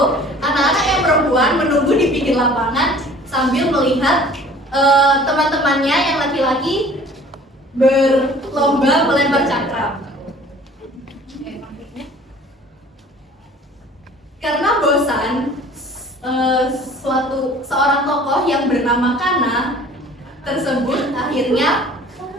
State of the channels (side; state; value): both; normal; correlation 0.49